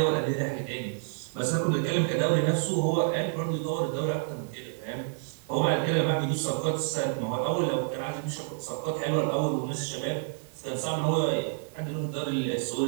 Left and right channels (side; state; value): left; silent; 59 dB below the other